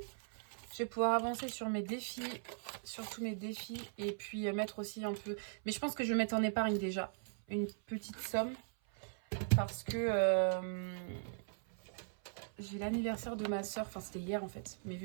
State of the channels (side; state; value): left; silent; 52 dB below the other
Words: Je vais pouvoir avancer sur mes défis, sur tous mes défis. Et puis mettre aussi un peu... Mais je pense que je vais mettre en épargne déjà une petite somme. Parce que j'ai l'anniversaire de ma soeur. Enfin, c'était hier en fait. Mais